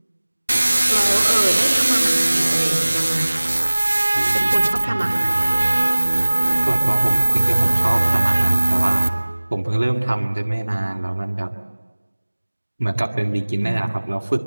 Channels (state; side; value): inverted; both; correlation -1.00